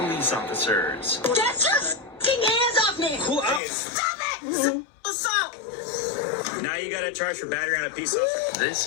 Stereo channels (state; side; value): drops out; right; at 3.6 s